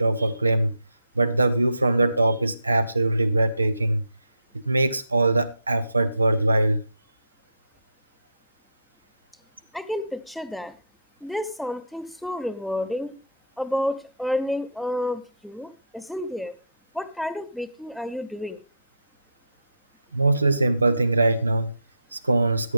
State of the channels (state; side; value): inverted; both; correlation -0.68